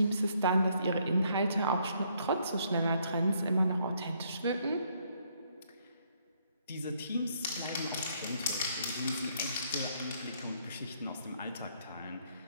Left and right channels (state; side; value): inverted; both; correlation -0.69